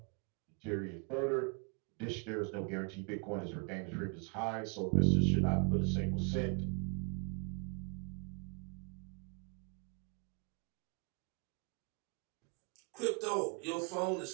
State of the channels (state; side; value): quieter; left; 37.5 dB